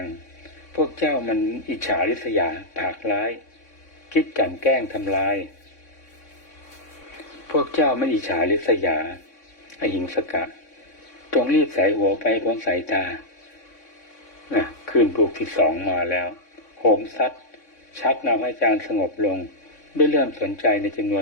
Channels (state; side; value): late; right; 3.6 ms